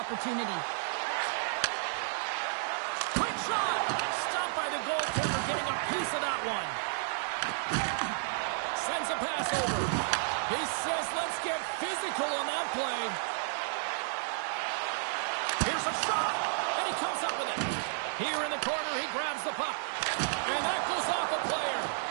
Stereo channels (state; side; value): silent; left; digital silence